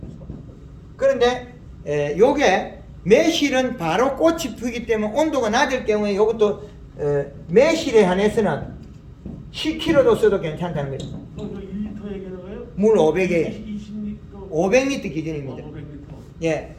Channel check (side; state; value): both; identical; correlation 1.00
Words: 그런데 요게 매실은 바로 꽃이 피기 때문에 온도가 낮을 경우에 이것도 매실에 한해서는 10kg도 써도 괜찮다는 거죠. 1리터 얘기하는 거예요? 물 500에 20리터 500리터 기준입니다. 500리터 예,